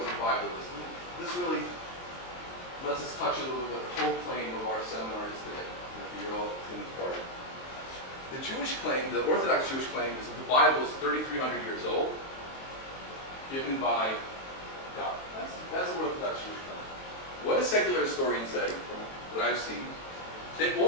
what the Bible is. This really lets us touch a little bit the whole claim of our seminar is today. You're all in part. The Jewish claim, the Orthodox Jewish claim, is that the Bible is 3,300 years old, given by God. That's the Orthodox Jewish claim. What do secular historians say, from what I've seen? They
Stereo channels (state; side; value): late; right; 23 ms